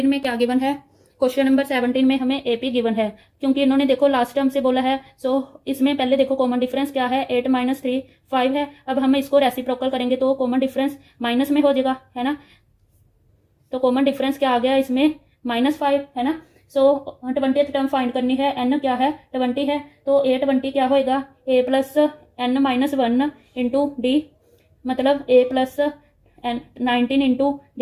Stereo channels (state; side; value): identical; both; correlation 1.00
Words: में क्या गिवन है, क्वेश्चन नंबर 17 में हमें AP गिवन है, क्योंकि इन्होंने देखो लास्ट टर्म से बोला है। सो इसमें पहले देखो कॉमन डिफरेंस क्या है, 8 माइनस 3 5 है। अब हम इसको रेसिप्रोकल करेंगे तो कॉमन डिफरेंस माइनस में हो जाएगा है ना, तो कॉमन डिफरेंस क्या आ गया इसमें -5 है ना। सो 20th टर्म फाइंड करनी है, n क्या है 20 है, तो a20 क्या होएगा, a plus n minus 1 into d, मतलब a प्लस 19 इंटू